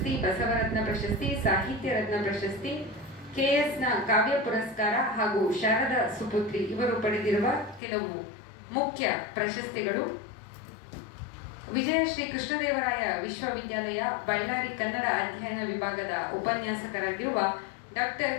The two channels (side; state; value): right; drops out; at 7.8 s